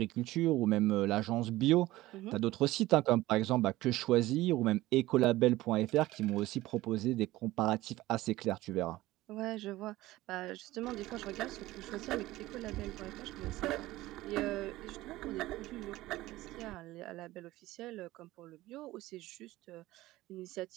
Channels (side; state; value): left; quieter; 17.3 dB